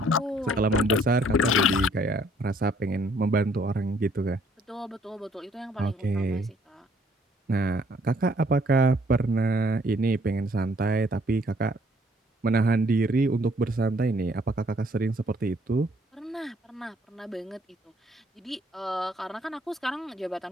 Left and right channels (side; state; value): both; normal; correlation 0.63